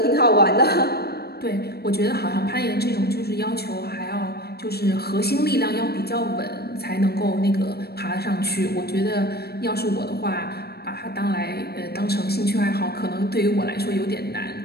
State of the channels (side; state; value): right; late; 0.46 ms